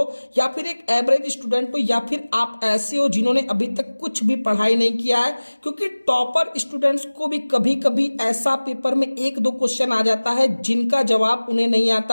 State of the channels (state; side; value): inverted; both; correlation -1.00